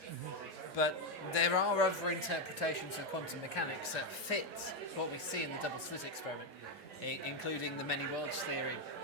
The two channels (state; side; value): normal; both; correlation 0.05